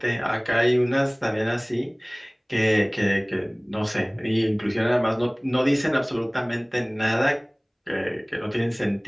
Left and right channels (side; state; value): both; identical; correlation 1.00